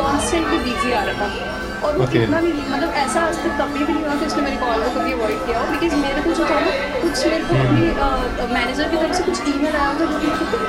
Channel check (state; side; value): identical; both; correlation 1.00